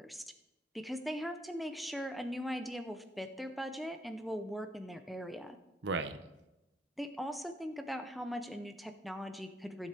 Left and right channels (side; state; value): both; normal; correlation 0.72